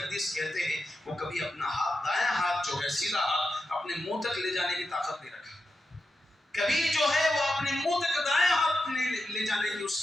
کہتے ہیں وہ کبھی اپنا ہاتھ، دایاں ہاتھ جو ہے سیدھا ہاتھ اپنے منہ تک لے جانے کی طاقت نہیں رکھا، کبھی جو ہے وہ اپنے منہ تک دایاں ہاتھ لے جانے کی اس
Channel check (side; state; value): both; normal; correlation 0.88